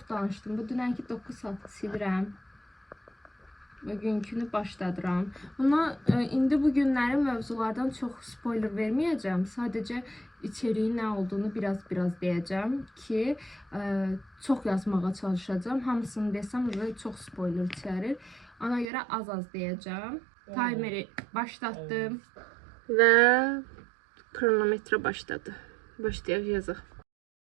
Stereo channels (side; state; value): left; drops out; at 18.9 s